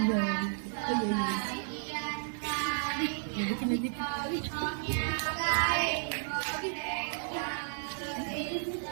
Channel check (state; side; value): silent; left; digital silence